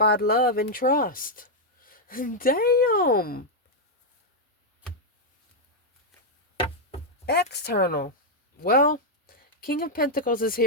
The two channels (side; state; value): both; normal; correlation -0.03